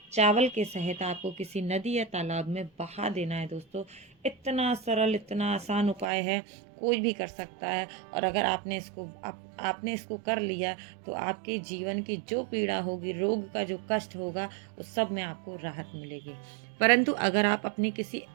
चावल के सहित आपको किसी नदी या तालाब में बहा देना है। दोस्तों, इतना सरल, इतना आसान उपाय है, कोई भी कर सकता है। और अगर आपने इसको कर लिया तो आपके जीवन की जो पीड़ा होगी, रोग का जो कष्ट होगा, उस सब में आपको राहत मिलेगी। परंतु अगर आप अपने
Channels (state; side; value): drops out; left; at 6.1 s